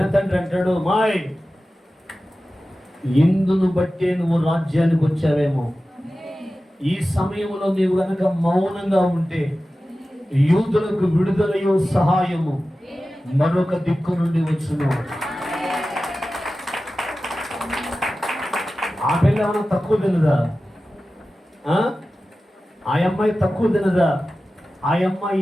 అంటాడు, మాయ్ ఇందును బట్టే నువ్వు రాజ్యానికి వచ్చావేమో, ఈ సమయంలో నీవు గనక మౌనంగా ఉంటే యూదులకు విడుదలయో సహాయము మరొక దిక్కు నుండి వచ్చును. ఆ పిల్ల ఏమైనా తక్కువ తినదా? ఆ అమ్మాయి తక్కువ తినదా? ఆ అమ్మాయి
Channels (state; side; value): normal; both; correlation 0.95